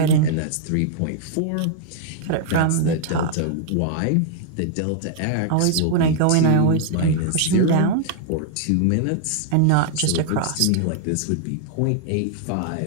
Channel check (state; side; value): different; both; correlation 0.00